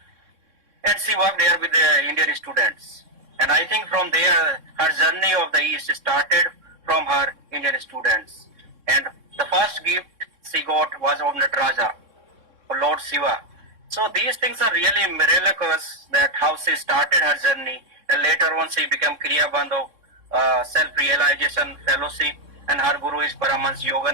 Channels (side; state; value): left; late; 3.6 ms